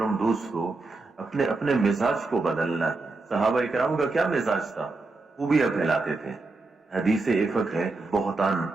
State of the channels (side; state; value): left; quieter; 3.5 dB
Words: دوستو، اپنے مزاج کو بدلنا ہے. صحابہ کرام کا کیا مزاج تھا؟ خوبیاں پھیلاتے تھے. حدیث افک ہے بہتان،